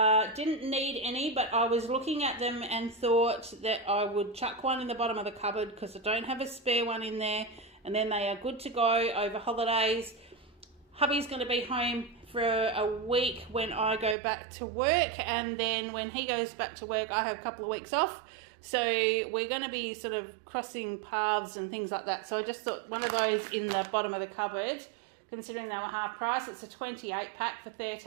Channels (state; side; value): drops out; left; at 14.2 s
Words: Didn't need any, but I was looking at them and thought that I would chuck one in the bottom of the cupboard because I don't have a spare one in there, and then they are good to go over holidays. Hubby's going to be home for a week when I go back to work, and then when he goes back to work I have a couple of weeks off, so we're going to be sort of crossing paths and things like that. So I just thought one of those in the bottom of the cupboard, considering they were half price. It's a 28-pack for